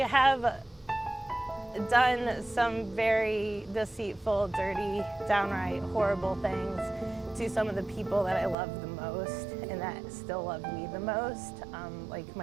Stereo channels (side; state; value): left; drops out; at 8.6 s